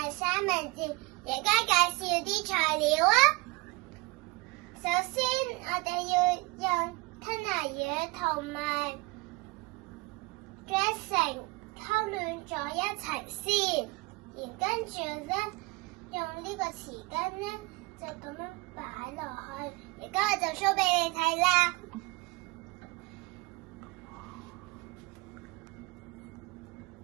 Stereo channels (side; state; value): left; quieter; 25.0 dB